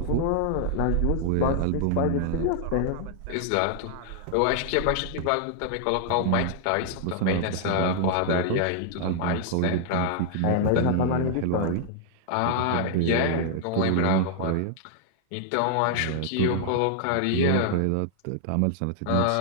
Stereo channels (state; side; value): different; both; correlation -0.01